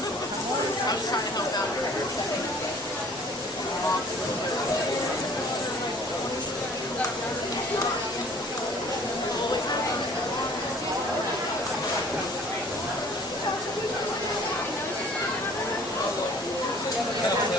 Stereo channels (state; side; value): normal; both; correlation 0.52